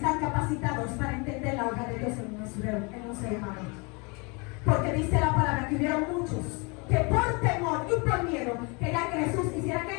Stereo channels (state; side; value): quieter; right; 30.4 dB